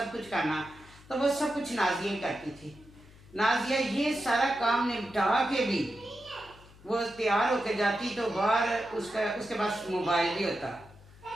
कुछ करना। तो वो सब कुछ नाजिया ही करती थी। नाजिया ये सारा काम निपटा के भी वो तैयार होकर जाती, तो बाहर उसके पास मोबाइल भी होता।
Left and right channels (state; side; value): noise; left; hum, 23 dB below the sound